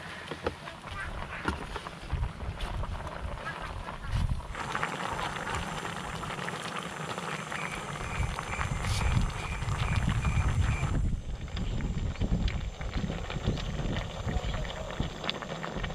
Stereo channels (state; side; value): identical; both; correlation 1.00